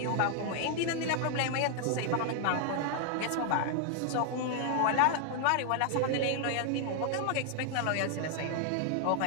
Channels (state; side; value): different; both; correlation 0.00